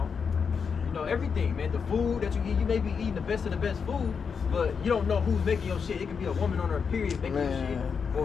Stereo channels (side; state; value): right; quieter; 6.0 dB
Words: Everything, man. The food that you eat, you may be eating the best of the best food, but you don't know who's making your shit. It could be a woman on her period making your shit,